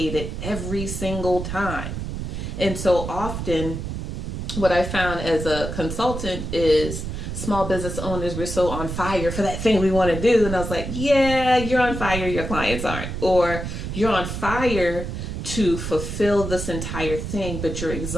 it every single time. And so often what I found as a consultant is small business owners were so on fire for that thing we want to do. And I was like, yeah, you're on fire, your clients aren't. Or you're on fire to fulfill this entire thing, but you're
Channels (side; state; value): right; noise; rumble, 5 dB below the sound